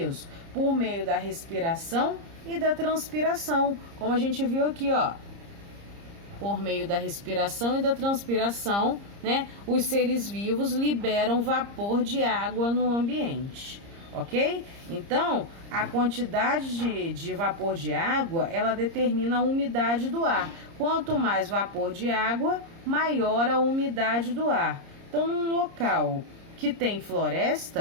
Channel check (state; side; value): late; left; 30 ms